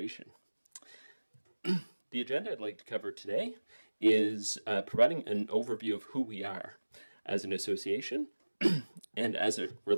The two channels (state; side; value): inverted; both; correlation -1.00